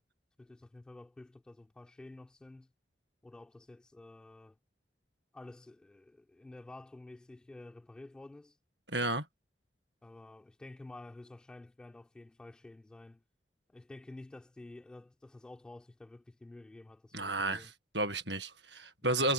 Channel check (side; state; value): both; normal; correlation 0.01